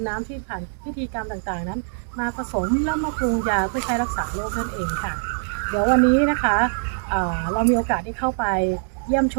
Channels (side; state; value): left; silent; digital silence